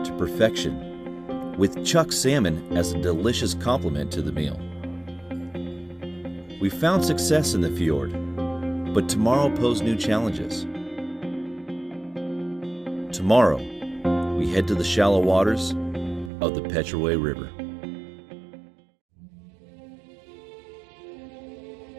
to perfection, with Chuck salmon as a delicious complement to the meal. We found success in the fjord, but tomorrow posed new challenges. Tomorrow, we head to the shallow waters of the Petraway River.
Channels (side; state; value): left; drops out; at 16.3 s